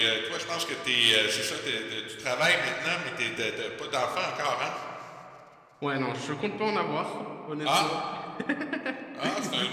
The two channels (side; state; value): both; identical; correlation 1.00